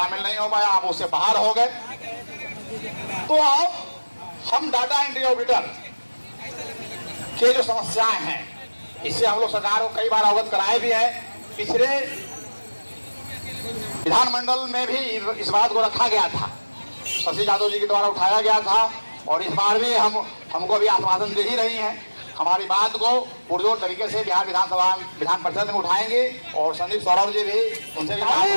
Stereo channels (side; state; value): both; inverted; correlation -1.00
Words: नहीं हो पाया, आप उससे बाहर हो गए। तो अब हम डाटा एंट्री ऑडिटर के जो समस्याएं हैं, इससे हम लोग सरकार को कई बार अवगत कराए भी है। पिछले विधानमंडल में भी इस बात को रखा गया था, शशि यादव जी के द्वारा उठाया गया था, और इस बार भी हमको भी आश्वासन दे ही रही हैं। हमारी बात को पुरजोर तरीके से बिहार विधान परिषद में उठाएंगे, और संदीप सौरभ जी भी उनसे भी